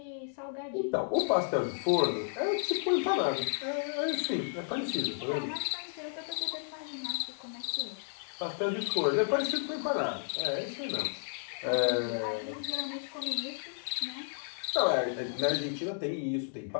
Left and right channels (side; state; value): right; silent; digital silence